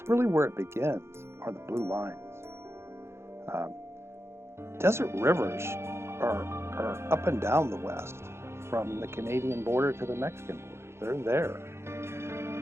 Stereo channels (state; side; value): late; left; 0.12 ms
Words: really where it begins, are the blue lines. Desert rivers are up and down the West, from the Canadian border to the Mexican border. They're there.